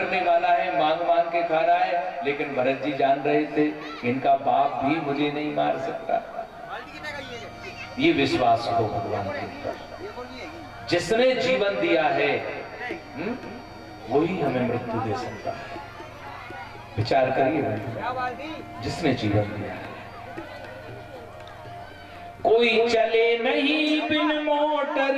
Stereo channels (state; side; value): identical; both; correlation 1.00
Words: वाला है, मांग मांग के खा रहा है। लेकिन भरत जी जान रहे थे इनका बाप भी मुझे नहीं मार सकता। ये विश्वास हो भगवान के ऊपर। जिसने जीवन दिया है वही हमें मृत्यु दे सकता है। विचार करिए, जिसने जीवन दिया है। कोई चले नहीं बिन